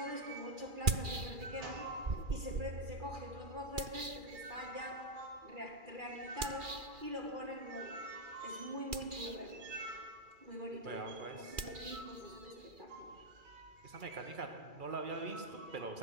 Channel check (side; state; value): left; late; 2.4 ms